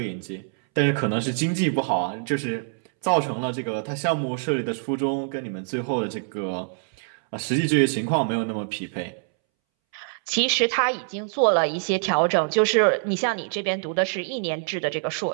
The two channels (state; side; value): silent; left; 62 dB below the other